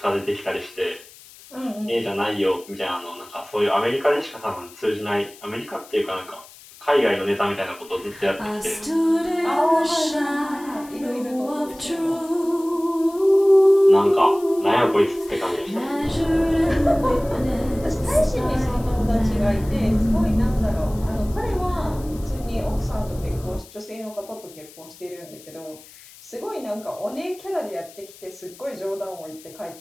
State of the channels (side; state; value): left; noise; hiss, 21 dB below the sound